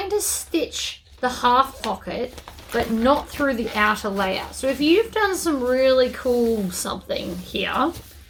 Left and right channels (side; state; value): both; identical; correlation 1.00